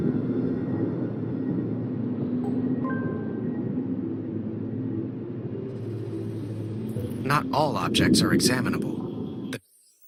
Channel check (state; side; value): identical; both; correlation 1.00